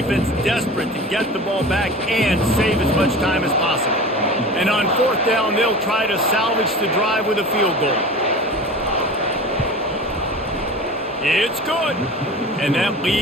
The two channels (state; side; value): normal; both; correlation 0.35